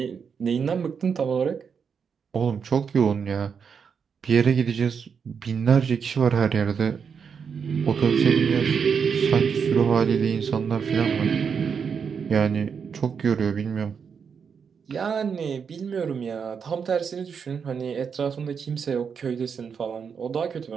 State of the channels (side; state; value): left; quieter; 6.5 dB